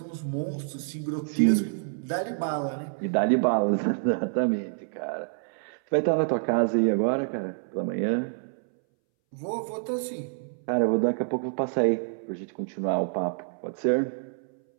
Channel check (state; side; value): silent; left; 60 dB below the other